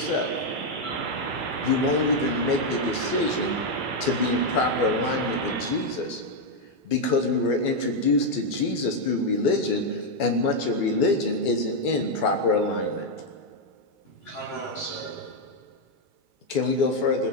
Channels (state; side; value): late; left; 2.3 ms